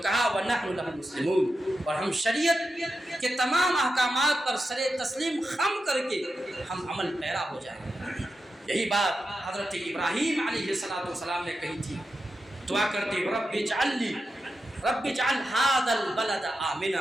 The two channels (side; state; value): both; normal; correlation 0.89